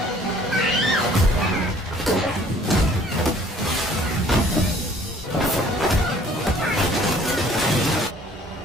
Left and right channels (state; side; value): normal; both; correlation 0.56